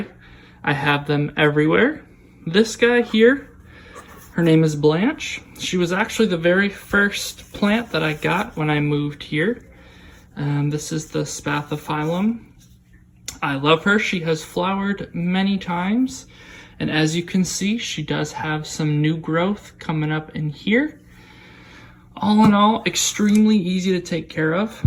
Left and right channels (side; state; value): both; identical; correlation 1.00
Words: I have them everywhere. This guy here, her name is Blanche. She was actually the very first plant that I got when I moved here. This is the Spathiphyllum. I love her. She has flowered many times, and as you can see, she does have some new growth coming up in here. All in all, extremely easy to take care of.